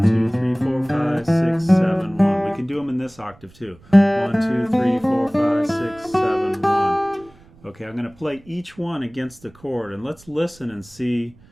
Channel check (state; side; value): noise; right; rumble, 26 dB below the sound